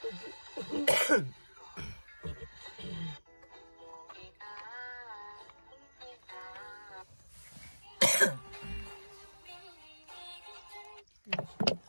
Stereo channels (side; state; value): both; inverted; correlation -1.00